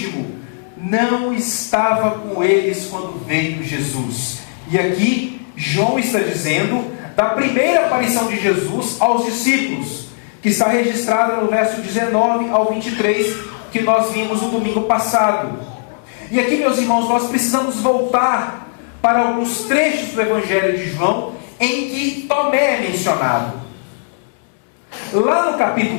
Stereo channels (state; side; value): silent; right; 67 dB below the other